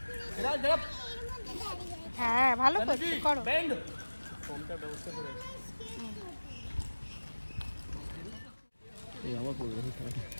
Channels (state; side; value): inverted; both; correlation -1.00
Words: হ্যাঁ ভালো করছো, করো। ফোনটা ব্যবস্থা করে এই আমার পড়বে,